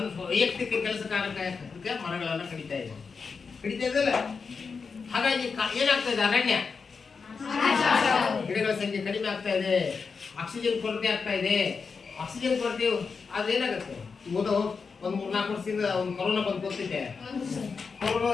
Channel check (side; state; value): right; quieter; 5.2 dB